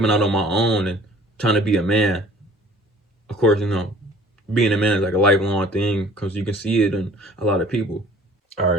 out on my own and trying to be a man. Of course, being a man is like a lifelong thing, because you can see it in a lot of people. All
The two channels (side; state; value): both; normal; correlation 0.51